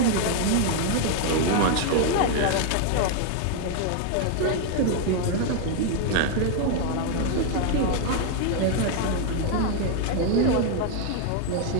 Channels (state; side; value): different; both; correlation 0.00